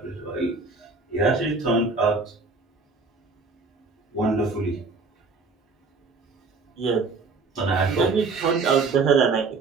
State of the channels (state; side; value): quieter; left; 4.2 dB